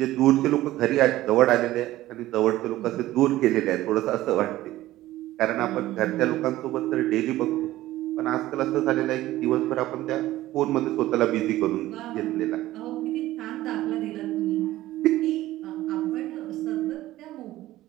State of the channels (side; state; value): left; quieter; 15.8 dB